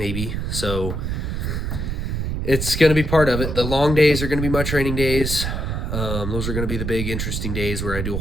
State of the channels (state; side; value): noise; right; rumble, 2 dB below the sound